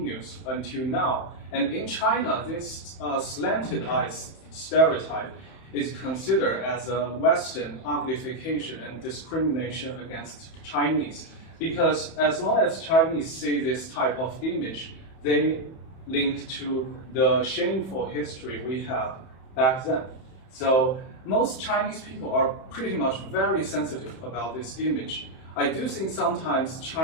until now. And in China, this slanted eyes stereotype is considered as a Western uglification and discrimination against Chinese. Because as long as Chinese see this type of image, they link to the shameful history we have back then. So most Chinese people are pretty much very sensitive about this image. I do think sometimes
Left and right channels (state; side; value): late; right; 31 ms